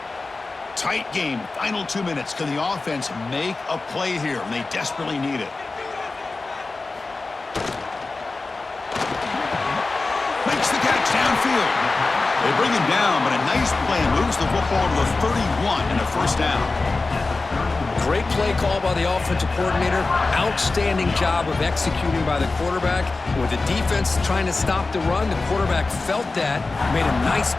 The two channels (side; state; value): right; quieter; 3.6 dB